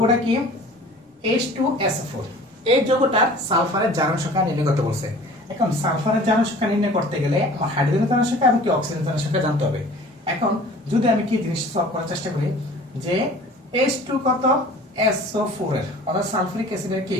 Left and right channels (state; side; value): normal; both; correlation 0.45